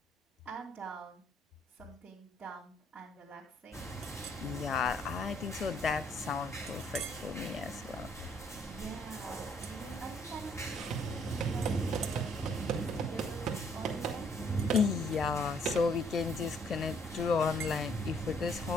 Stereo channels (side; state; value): both; normal; correlation 0.66